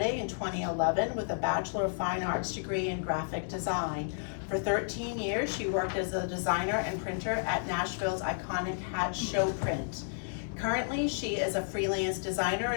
in 2011 with a Bachelor of Fine Arts degree in graphic design. For 13 years, she worked as a designer and printer at Nashville's iconic Hat Show Print. Currently, she is a freelance designer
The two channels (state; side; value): silent; right; digital silence